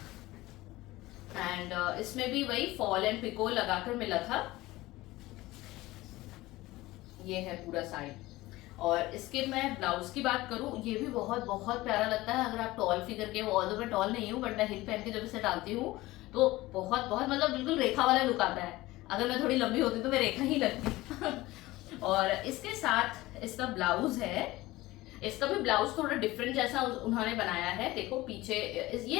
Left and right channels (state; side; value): quieter; right; 18.6 dB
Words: एंड इसमें भी वही फॉल एंड पिको लगाकर मिला था। ये है पूरा साड़ी, और इसके मैं ब्लाउज की बात करूं, ये भी बहुत बहुत प्यारा लगता है। अगर आप टॉल फिगर के, ऑल्दो मैं टॉल नहीं हूँ बट मैं हिल पहन के जब इसे डालती हूँ तो बहुत बहुत मतलब बिल्कुल रेखा वाला लुक आता है। अगर मैं थोड़ी लंबी होती तो मैं रेखा ही लगती। और इसके साथ इसका ब्लाउज है, इसका भी ब्लाउज थोड़ा डिफरेंट जैसा उन्होंने बनाया है। देखो पीछे